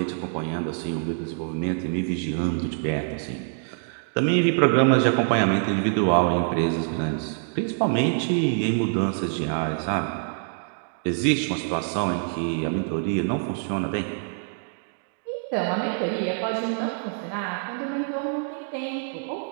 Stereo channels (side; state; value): left; silent; 61 dB below the other